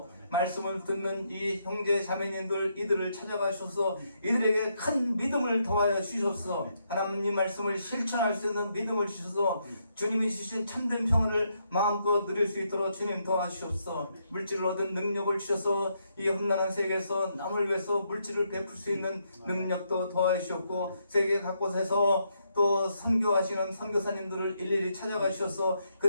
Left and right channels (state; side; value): inverted; both; correlation -0.77